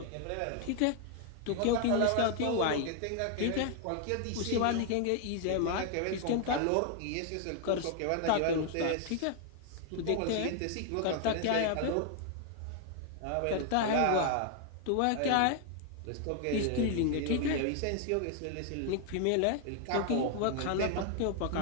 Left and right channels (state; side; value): different; both; correlation 0.00